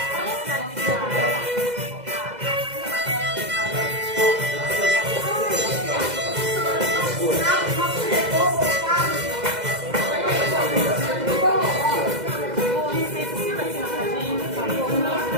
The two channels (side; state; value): left; late; 2.0 ms